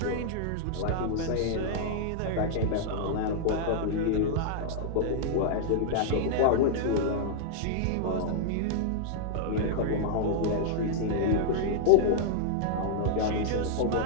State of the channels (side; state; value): both; different; correlation -0.01